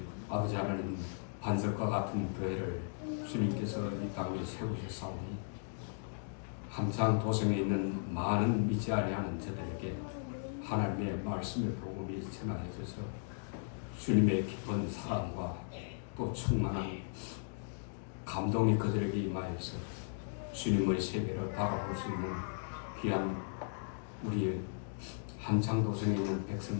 아버지 하나님, 반석과 같은 교회를 주님께서 이 땅에 세우셨사오니 함창 도성에 있는 많은 믿지 아니하는 저들에게 하나님의 말씀의 복음이 전하여져서 주님의 깊은 사랑과 또 충만한 감동이 그들에게 임하여서 주님의 세계를 바라볼 수 있는 귀한 우리 함창도성에 있는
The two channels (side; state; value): right; silent; digital silence